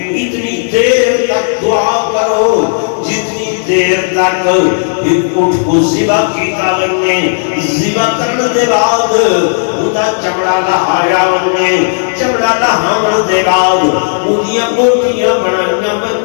اتنی دیر تک دعا کرو جتنی دیر تک ایک اٹھ کو زبا کیتا لگنے زبا کرنے دے بعد اُدا چمڑا لہایا وننے چمڑا لہاون دے بعد اُدیاں بوٹیاں بنائیاں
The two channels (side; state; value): right; silent; digital silence